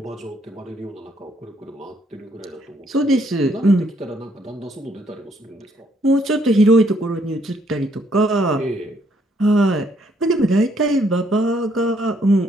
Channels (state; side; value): normal; both; correlation 0.70